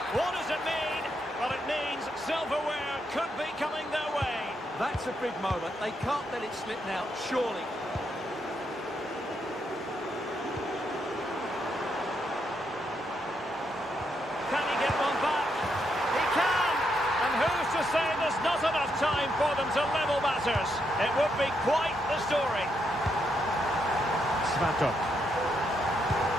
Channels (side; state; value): both; normal; correlation 0.79